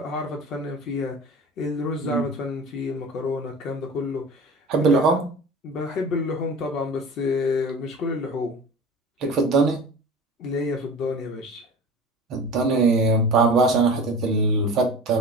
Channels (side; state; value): both; normal; correlation 0.37